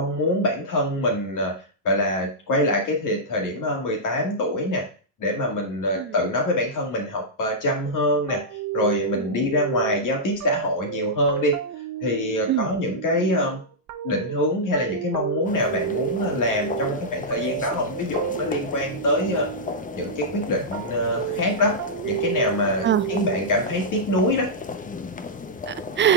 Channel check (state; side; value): normal; both; correlation -0.10